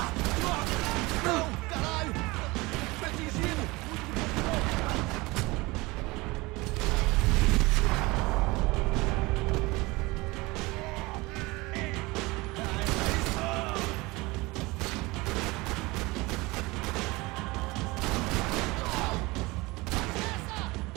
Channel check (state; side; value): quieter; left; 22.9 dB